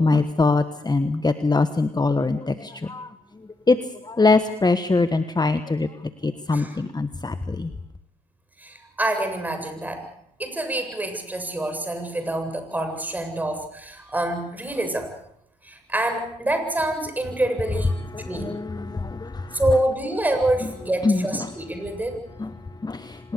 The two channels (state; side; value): normal; both; correlation 0.81